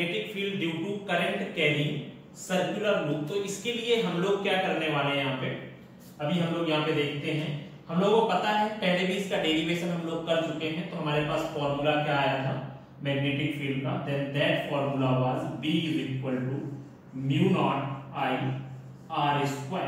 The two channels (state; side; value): identical; both; correlation 1.00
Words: field due to current carrying circular loop. तो इसके लिए हम लोग क्या करने वाले हैं यहाँ पे, अभी हम लोग यहाँ पे देखते हैं। हम लोगों को पता है, पहले भी इसका डेरिवेशन हम लोग कर चुके हैं। तो हमारे पास फॉर्मूला क्या आया था मैग्नेटिक फील्ड का, then that formula was B is equal to mu naught I R